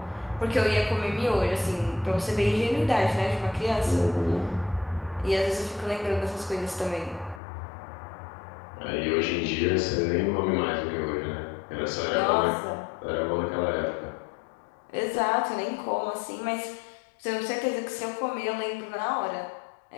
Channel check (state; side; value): drops out; right; at 7.4 s